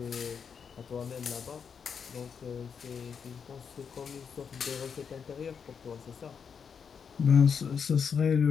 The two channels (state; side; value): quieter; right; 6.6 dB